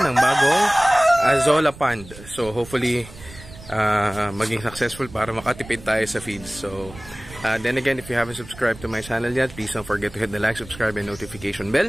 bagong Azolla pond. So hopefully maging successful para makatipid tayo sa feeds. So then again, if you haven't subscribed to my channel yet, please don't forget to hit the like, subscribe, and notification bell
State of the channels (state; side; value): noise; right; rumble, 18 dB below the sound